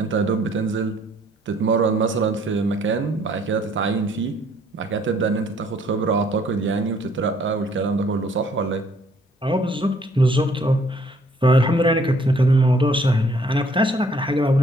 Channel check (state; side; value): normal; both; correlation 0.62